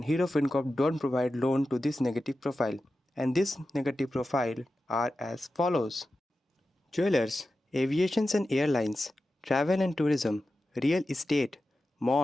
Hero Fincorp don't provide loan to this negative profile and this negative profile are as follows: jewelers, aviations and airlines, travel and tourism, real estate,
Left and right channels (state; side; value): normal; both; correlation 0.92